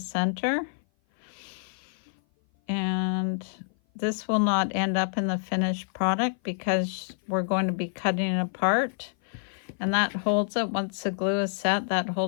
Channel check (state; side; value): silent; right; 56 dB below the other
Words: And this will not end up in the finished product because we're going to be cutting it apart, and that holds it. Once the glue is set, that